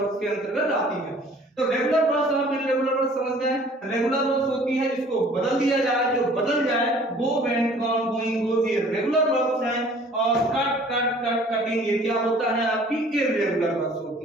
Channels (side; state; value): both; normal; correlation 0.52